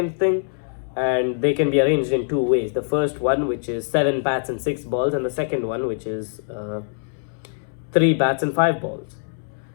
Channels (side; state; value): right; silent; 63 dB below the other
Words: thing, and they can be arranged in 2 ways. The first one, which is 7 bats and 6 balls, and the second one, which is 3 bats and 5 balls.